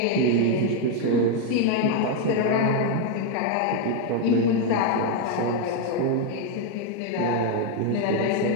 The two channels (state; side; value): different; both; correlation 0.01